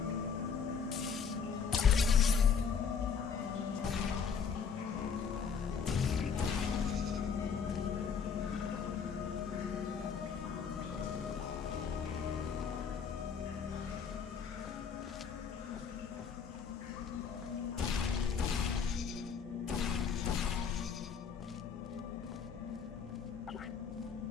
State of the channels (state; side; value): quieter; right; 6.4 dB